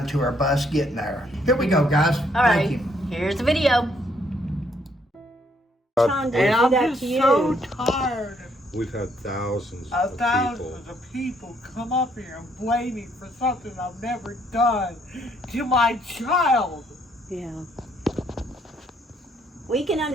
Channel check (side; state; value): both; normal; correlation 0.69